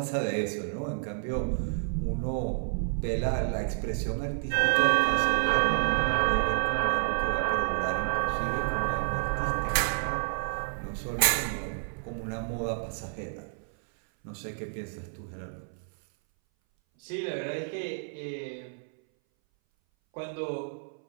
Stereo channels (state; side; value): silent; left; 58 dB below the other